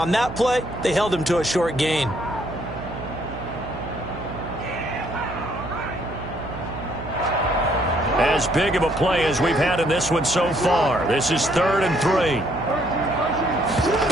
that play, they held him to a short gain. As big of a play as we've had in this one so far. This is 3rd and 3.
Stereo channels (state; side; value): noise; right; hum, 10 dB below the sound